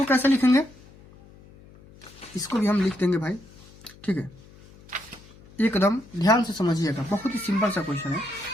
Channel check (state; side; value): noise; left; hum, 23 dB below the sound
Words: कैसे लिखेंगे, इसको भी हम लिख देंगे भाई। ठीक है, एकदम ध्यान से समझिएगा, बहुत ही सिंपल सा क्वेश्चन है